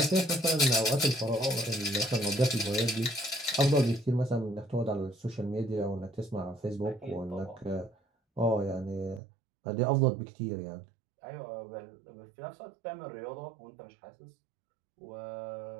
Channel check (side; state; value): left; drops out; at 9.2 s